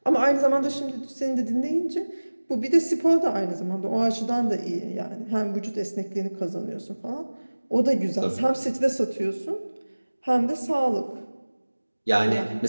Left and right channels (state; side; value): inverted; both; correlation -1.00